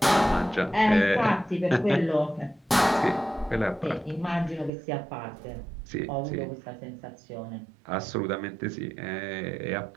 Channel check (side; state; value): left; drops out; at 4.7 s